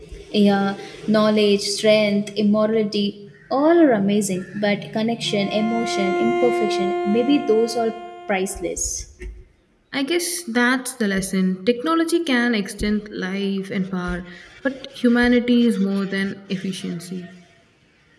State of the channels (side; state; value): both; identical; correlation 1.00